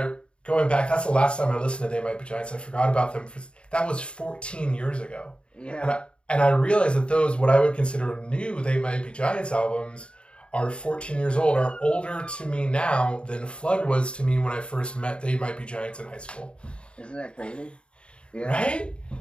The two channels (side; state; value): right; late; 0.055 ms